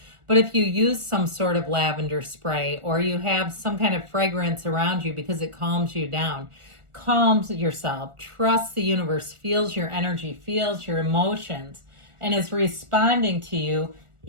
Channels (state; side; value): late; left; 1.4 ms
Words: But if you use some sort of lavender spray, or you have some kind of fragrance around you because it calms you down, calms yourself, trusts the universe, feels your energy, feels your emotions, and is responding to you